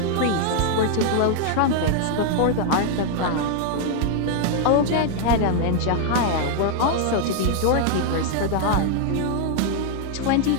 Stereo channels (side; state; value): both; different; correlation 0.00